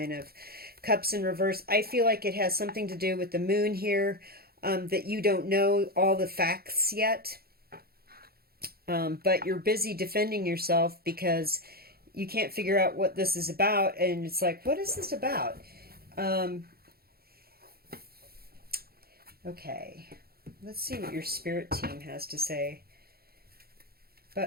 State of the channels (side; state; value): left; late; 0.45 ms